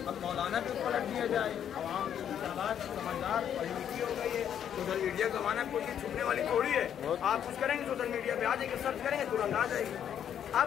अब मौलाना भी पलट दिया जाए। आवाम समझदार पढ़ी लिखी हो गई है, सोशल मीडिया का ज़माना, कोई चीज़ छुपने वाली थोड़ी है। आप कुछ करेंगे सोशल मीडिया पे आ जाएंगे, सर्च करेंगे तुरंत आ जाएगी।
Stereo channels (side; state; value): right; quieter; 9.3 dB